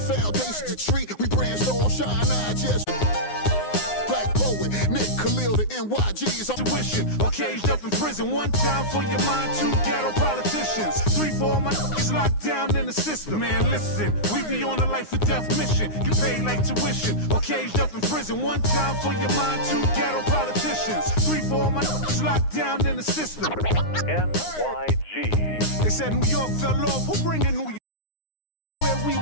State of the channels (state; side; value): late; right; 9.7 ms